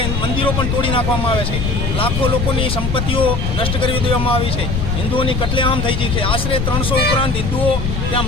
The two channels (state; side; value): noise; left; rumble, 1 dB below the sound